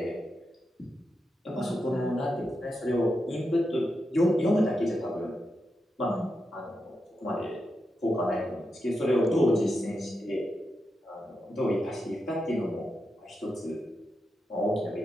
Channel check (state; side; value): normal; both; correlation 0.87